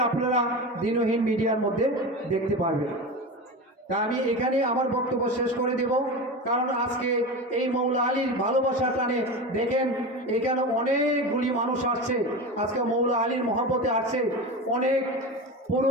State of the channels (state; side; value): normal; both; correlation 0.25